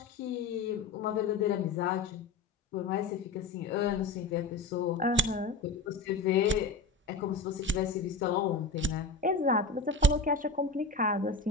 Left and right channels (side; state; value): right; quieter; 3.6 dB